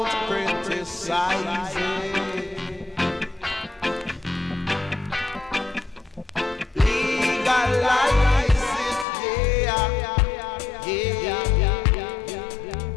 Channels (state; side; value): drops out; right; at 9.1 s